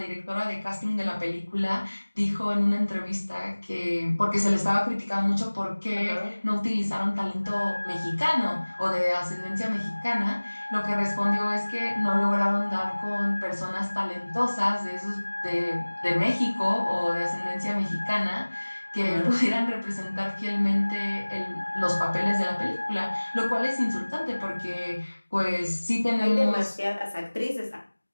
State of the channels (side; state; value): both; inverted; correlation -1.00